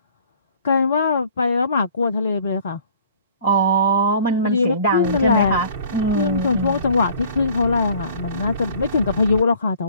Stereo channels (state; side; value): inverted; both; correlation -0.53